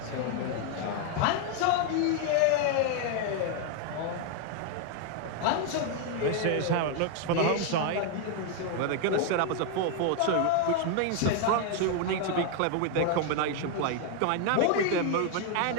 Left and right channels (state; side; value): different; both; correlation 0.01